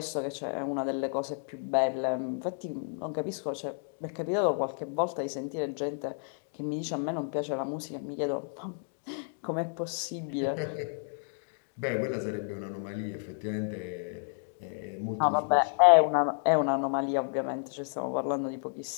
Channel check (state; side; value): silent; right; 57 dB below the other